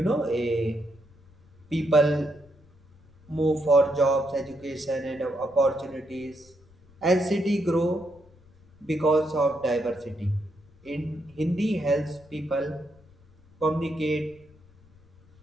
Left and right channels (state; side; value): noise; left; rumble, 27 dB below the sound